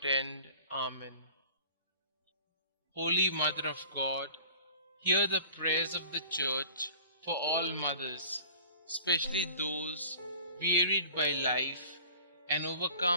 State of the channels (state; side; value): inverted; both; correlation -0.45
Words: end. Amen. Holy Mother of God, hear the prayers of the Church for all mothers, especially those wearied by life and